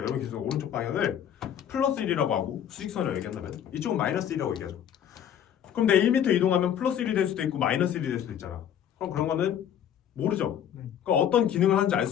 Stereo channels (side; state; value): right; quieter; 9.5 dB